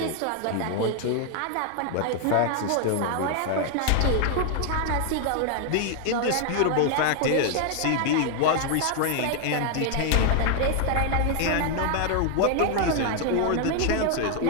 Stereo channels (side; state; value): both; different; correlation 0.00